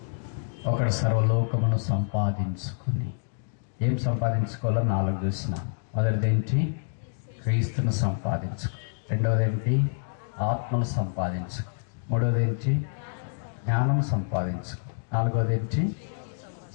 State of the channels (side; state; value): right; silent; digital silence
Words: ఒకడు సర్వలోకమును సంపాదించుకుని, ఏం సంపాదించుకోవాలో 4 చూసిన. మొదటిదేంటి? క్రీస్తును సంపాదించుకో. రెండవదేంటి? ఆత్మను సంపాదించుకో. మూడవదేంటి? జ్ఞానం సంపాదించుకో. 4వదేంటి?